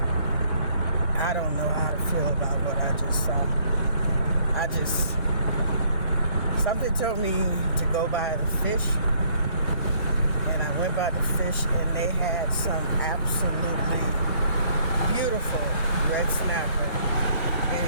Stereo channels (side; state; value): both; inverted; correlation -0.65